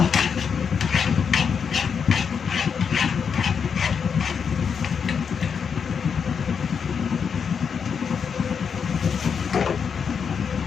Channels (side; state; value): right; quieter; 6.6 dB